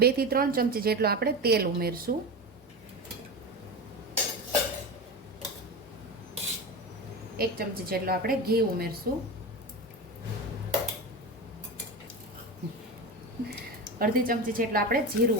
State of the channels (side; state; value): both; normal; correlation 0.23